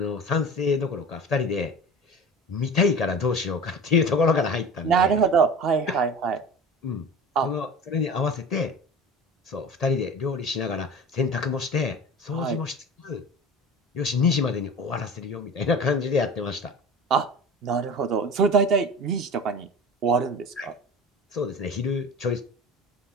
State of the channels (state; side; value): normal; both; correlation 0.35